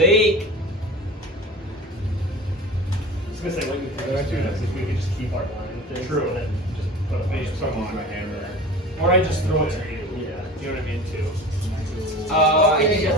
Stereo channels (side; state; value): both; normal; correlation 0.37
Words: I was gonna say, what you think if we could just keep our line with this, True. and then just put a bunch Use of stuff Use on. my hammer. Or I just throw it to you. Yeah. You know what I mean, too. I think